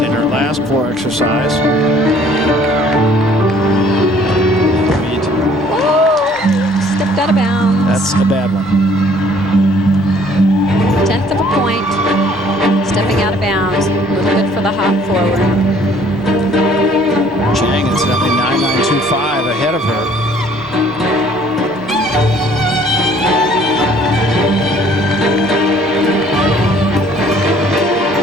in her last floor exercise. Stepped out of bounds. That's a bad one. 1/10 of a point. Stepping out of bounds. Look good for the hop forward. Chang incidentally 9.925 ahead of her.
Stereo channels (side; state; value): both; normal; correlation 0.57